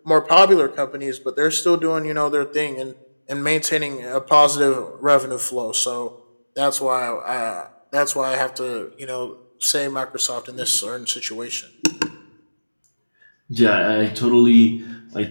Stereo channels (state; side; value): inverted; both; correlation -1.00